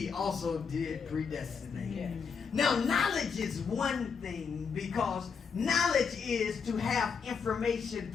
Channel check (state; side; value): quieter; right; 5.9 dB